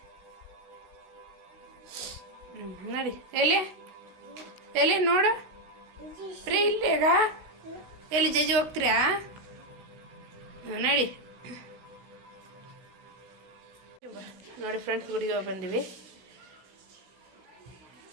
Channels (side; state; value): left; late; 16 ms